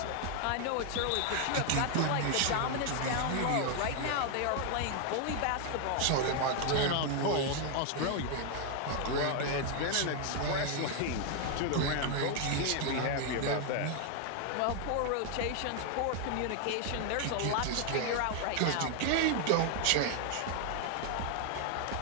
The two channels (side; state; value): both; different; correlation 0.00